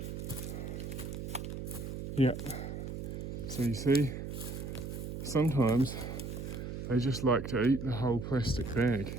Yep. So you see, sometimes they just like to eat the whole plastic bag.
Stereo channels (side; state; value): right; noise; hum, 6 dB below the sound